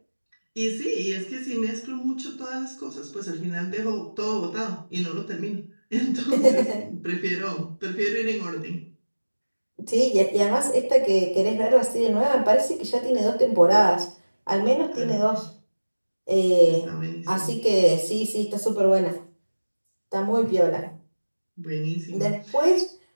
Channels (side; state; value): both; inverted; correlation -1.00